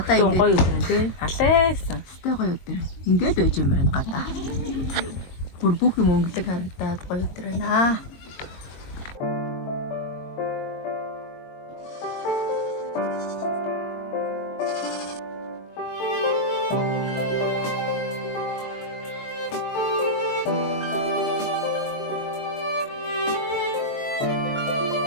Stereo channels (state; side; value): late; right; 22 ms